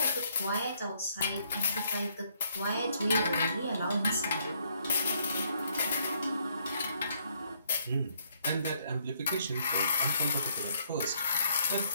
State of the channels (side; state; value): both; inverted; correlation -0.70